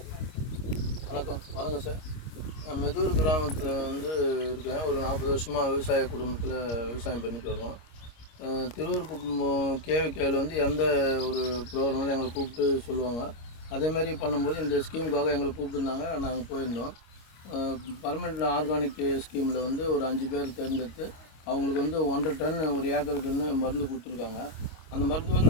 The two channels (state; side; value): late; right; 25 ms